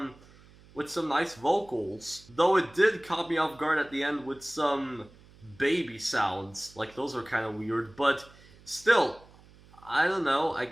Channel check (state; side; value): noise; right; hum, 25 dB below the sound